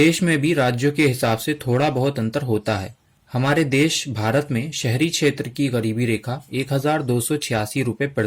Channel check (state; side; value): identical; both; correlation 1.00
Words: में भी राज्यों के हिसाब से थोड़ा बहुत अंतर होता है। हमारे देश भारत में शहरी क्षेत्र की गरीबी रेखा 1286 रुपये